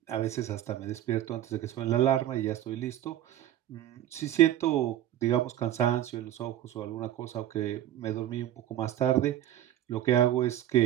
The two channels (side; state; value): left; quieter; 12.2 dB